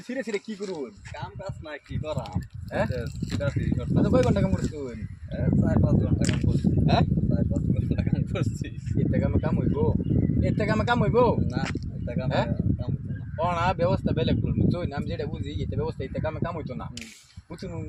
সিরে সিরে কি করব কাম কাজ না কি করা হ্যাঁ সিরাসি আচ্ছা কয় ঘন্টা কাম করছো 4-5 ঘন্টা কাম করছি হ্যাঁ 4-5 ঘন্টা কাম করছি এতে কামে কাম হইবো না এটা কাম হ্যাঁ? কাম হতো না অনা ব্যবস্থা বেলেগ করবো তুই আমি যেটা বুঝি এতে ব্যবস্থা এতে কামে কাম হইতো না বুঝুন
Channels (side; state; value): both; identical; correlation 1.00